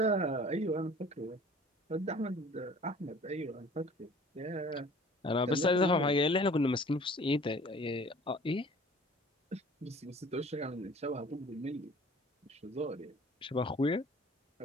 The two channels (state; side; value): normal; both; correlation 0.49